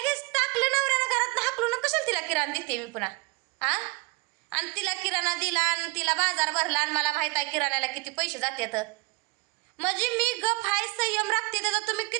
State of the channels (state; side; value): quieter; left; 28.1 dB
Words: टाकलं नवऱ्यानं घरात हाकलून. कशाला तिला किराणा देते मी पुन्हा? आणि तिला किराणा दिला आणि तिला बाजार भरला आणि मला माहित आहे किराण्याला किती पैसे जातात. म्हणजे मी गप हाय, संयम राखते, त्याचा तुम्ही